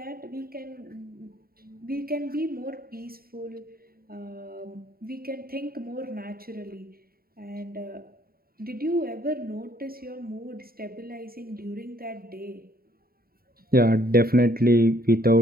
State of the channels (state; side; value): late; left; 0.43 ms